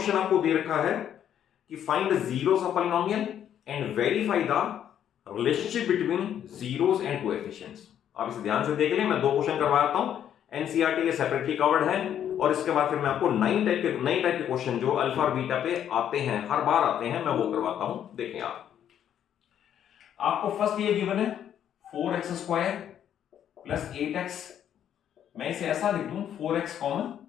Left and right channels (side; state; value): right; quieter; 9.9 dB